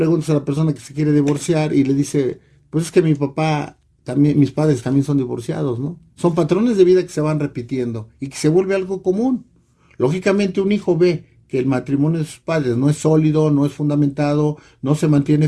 a la persona que se quiere divorciar y le dice, pues es que mi papá, también, mis padres también son divorciados, ¿no? Son patrones de vida que se van repitiendo y que se vuelve algo común. Lógicamente un hijo ve que el matrimonio de sus padres no es sólido, no es fundamentado, no se mantiene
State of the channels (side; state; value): both; identical; correlation 1.00